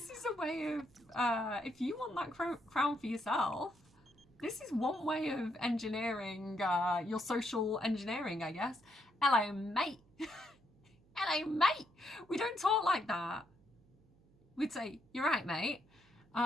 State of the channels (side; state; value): right; noise; hum, 30 dB below the sound